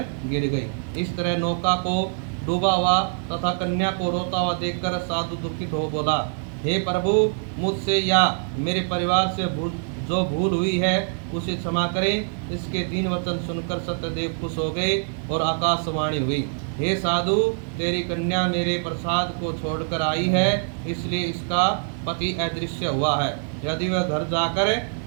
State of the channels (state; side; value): silent; left; 56 dB below the other